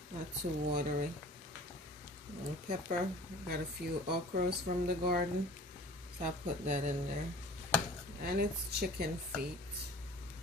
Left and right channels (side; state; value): both; normal; correlation 0.45